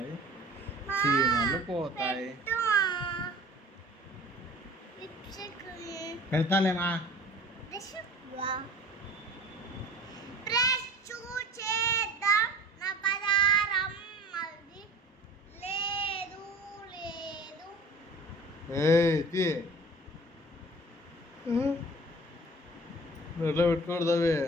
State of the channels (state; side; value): normal; both; correlation 0.43